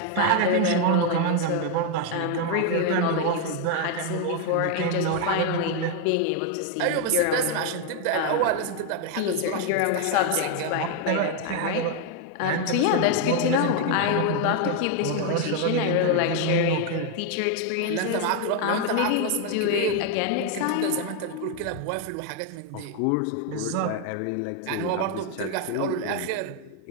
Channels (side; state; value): both; different; correlation 0.01